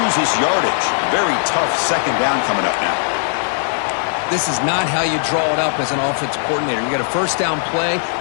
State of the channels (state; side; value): silent; right; 67 dB below the other